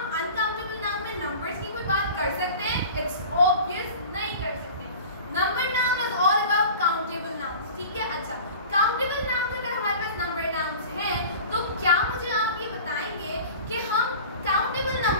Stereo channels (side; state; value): both; inverted; correlation -0.39